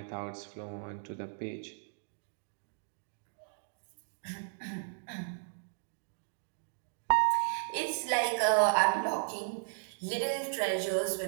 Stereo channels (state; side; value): silent; left; digital silence